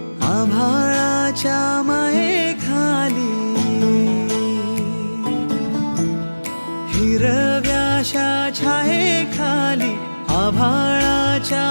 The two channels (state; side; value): inverted; both; correlation -1.00